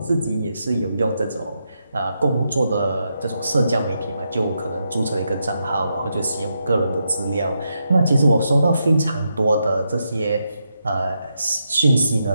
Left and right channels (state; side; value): inverted; both; correlation -0.83